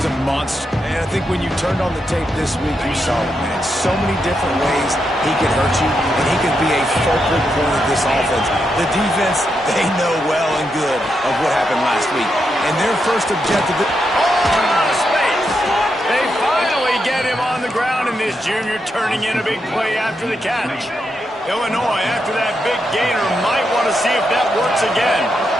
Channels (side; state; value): both; normal; correlation 0.83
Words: a monster. And I think when you turned on the tape this week, you saw it, man. So many different ways he could hurt you, and he could be a focal point of this offense. The defense, they know well and good of what happened last week. And their first objective... Space! They finally get him on the ground, and this junior turning in a big play after the catch. Illinois, after that big gainer, might want to see if that works again.